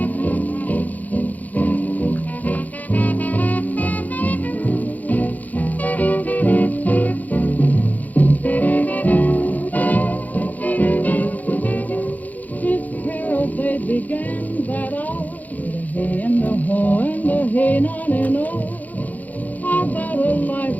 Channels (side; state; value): right; late; 0.080 ms